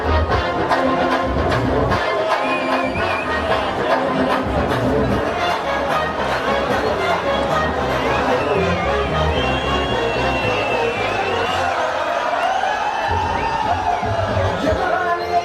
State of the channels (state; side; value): identical; both; correlation 1.00